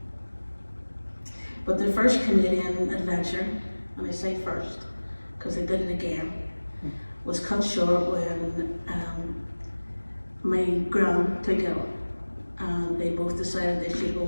But their first Canadian adventure, and I say first because they did it again, was cut short when my gran took ill, and they both decided they should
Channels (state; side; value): inverted; both; correlation -1.00